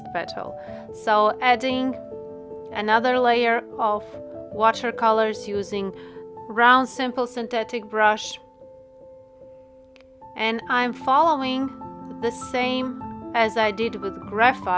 petal. So adding another layer of watercolors using round simple synthetic brush, and I'm following the same as I did with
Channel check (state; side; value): identical; both; correlation 1.00